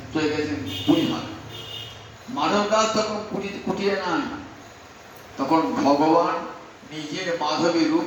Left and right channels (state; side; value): identical; both; correlation 1.00